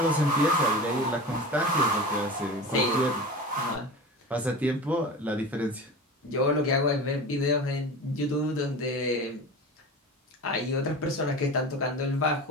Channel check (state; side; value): normal; both; correlation 0.32